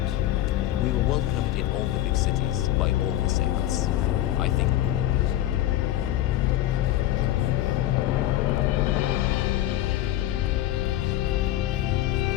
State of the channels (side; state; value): right; quieter; 13.8 dB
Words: We were welcomed in all the big cities by all the sects. I think